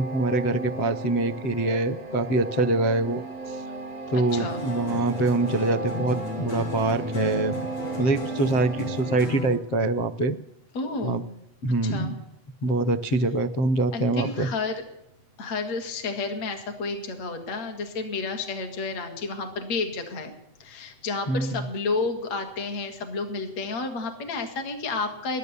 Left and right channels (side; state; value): right; late; 8.0 ms